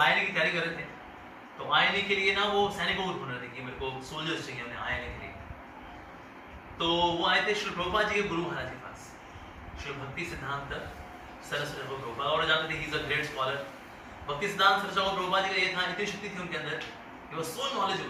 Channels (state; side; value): identical; both; correlation 1.00